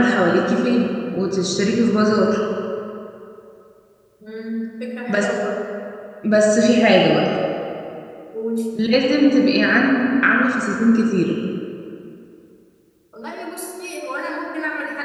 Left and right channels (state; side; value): identical; both; correlation 1.00